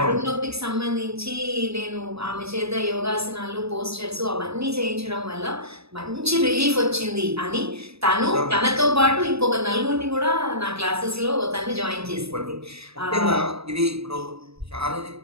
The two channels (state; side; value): late; left; 0.78 ms